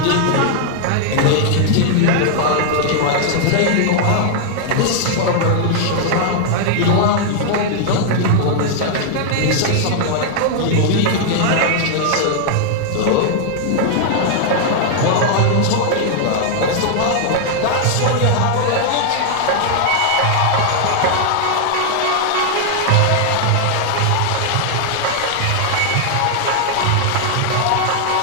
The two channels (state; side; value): different; both; correlation -0.01